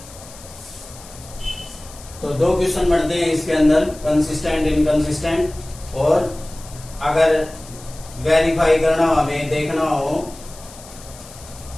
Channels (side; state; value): left; noise; hiss, 19 dB below the sound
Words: तो 2 क्वेश्चन बनते हैं इसके अंदर, कंसिस्टेंट इनकंसिस्टेंट, और अगर वेरीफाई करना हो, हमें देखना हो,